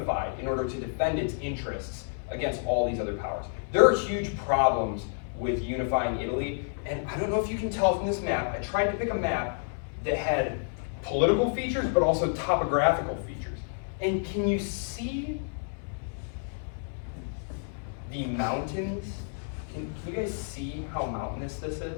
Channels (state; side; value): silent; right; 58 dB below the other